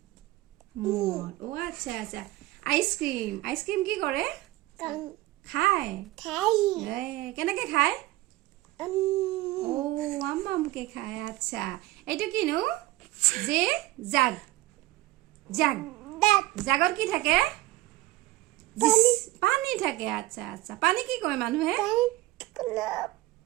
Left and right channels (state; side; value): quieter; left; 17.9 dB